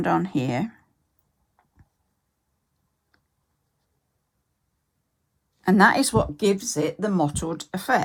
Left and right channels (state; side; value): identical; both; correlation 1.00